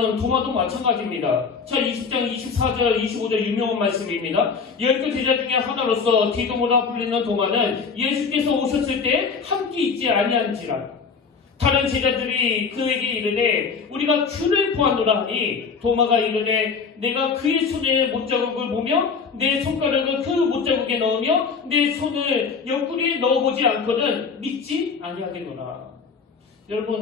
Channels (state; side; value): quieter; right; 5.4 dB